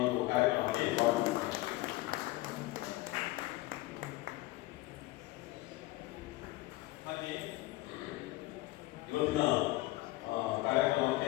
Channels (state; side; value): quieter; right; 19.0 dB